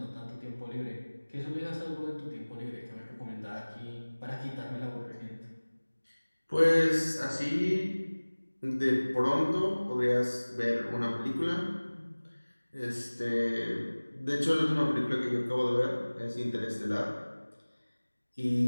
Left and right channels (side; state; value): both; inverted; correlation -1.00